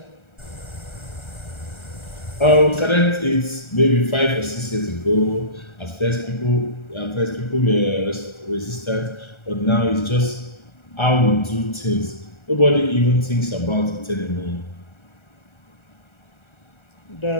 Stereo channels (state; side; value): late; right; 1.3 ms